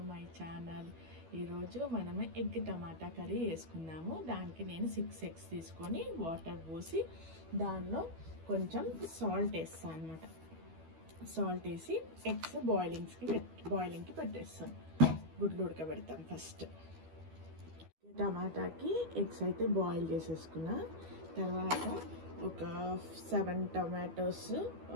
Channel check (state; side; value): late; left; 12 ms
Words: my channel. ఈరోజు మనము ఎగ్ టమాటా కర్రీ వేసుకుందాము. దానికి నేను 6 eggs తీసుకొని వాటర్ పోసి దానిలో కొంచెం సాల్ట్ వేస్తాను అనమాట. సాల్ట్ వేసి ఎగ్స్ బాయిలింగ్కి పెట్టేస్తాను. గుడ్లు ఉడకబెడతాను. ఫస్ట్ టమాటాకి ఎగ్స్ అయితే బాయిల్ చేసేసుకున్నా. తర్వాత ఒక 7 tomatoes,